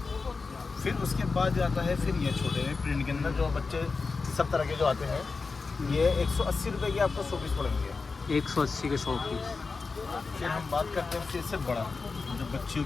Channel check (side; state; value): right; quieter; 4.4 dB